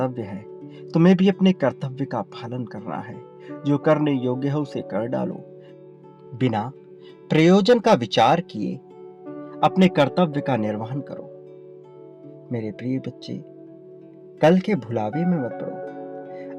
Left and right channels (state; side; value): identical; both; correlation 1.00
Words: है। तुम्हें भी अपने कर्तव्य का पालन करना है। जो करने योग्य है उसे कर डालो। बिना प्रयोजन का विचार किए अपने कर्तव्य का निर्वहन करो। मेरे प्रिय बच्चे, कल के भुलावे में मत पड़ो।